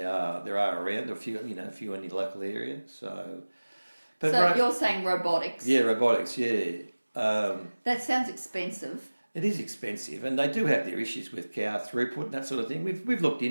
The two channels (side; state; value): both; inverted; correlation -1.00